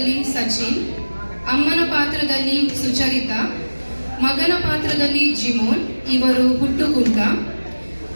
ಸಚಿನ್, ಅಮ್ಮನ ಪಾತ್ರದಲ್ಲಿ ಸುಚರಿತಾ, ಮಗನ ಪಾತ್ರದಲ್ಲಿ ಜಿಮೋನ್, ಇವರು ಹುಟ್ಟುಕುಂಟ,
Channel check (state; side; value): inverted; both; correlation -1.00